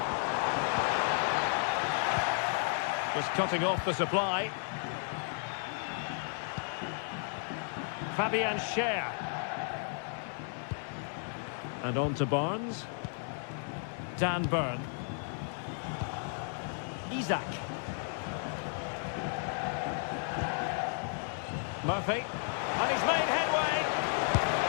Just cutting off the supply. Fabian Schär. And on to Barnes. Dan Burn. Isak. Murphy. And he's made headway.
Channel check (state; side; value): silent; right; 55 dB below the other